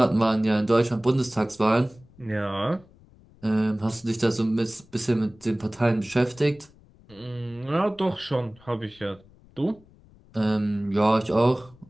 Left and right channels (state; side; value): noise; left; rumble, 27 dB below the sound